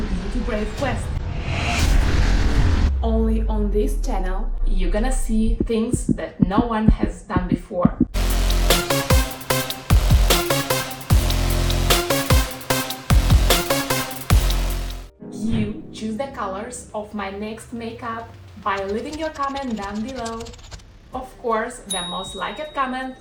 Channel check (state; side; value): identical; both; correlation 1.00